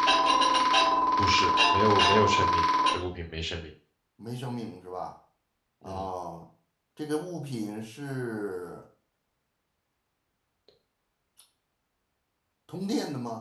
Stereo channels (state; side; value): identical; both; correlation 1.00